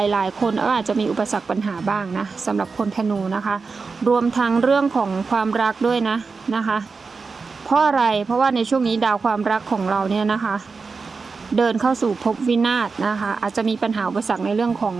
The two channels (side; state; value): left; quieter; 4.6 dB